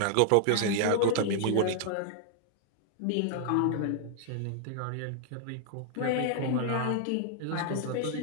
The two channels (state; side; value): different; both; correlation 0.00